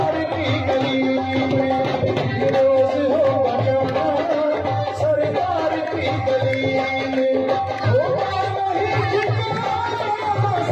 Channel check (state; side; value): identical; both; correlation 1.00